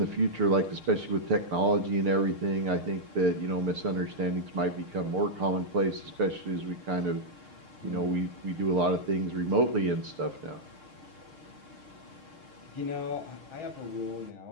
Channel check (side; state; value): left; late; 6.5 ms